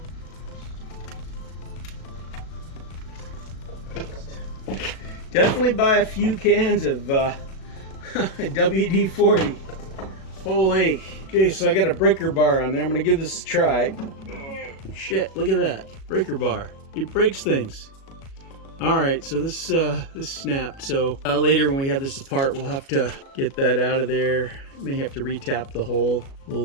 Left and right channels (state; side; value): late; right; 37 ms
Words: Definitely buy a few cans of WD-40. Holy. Okay, so I got a breaker bar on there. I'm gonna give this a try. Shit, look at that. Breaker bar. It breaks things. Alright, so this snapped. So later when we have this apart, we'll have to get that out of there. May have to retap the hole.